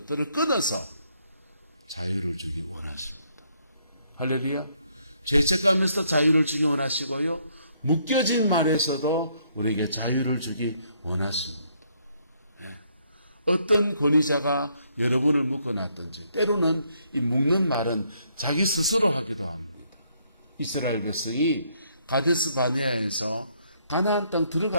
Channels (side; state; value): both; inverted; correlation -0.71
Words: 끊어서 자유를 주기 원하십니다. 할렐루야. 죄책감에서 자유를 주기 원하시고요. 묶여진 말에서도 우리에게 자유를 주기 원하십니다. 네. 어떤 권위자가 여러분을 묶어놨든지 때로는 이 묶는 말은 자기 스스로 하기도 합니다. 이스라엘 백성이 가데스 바네아에서 가나안 땅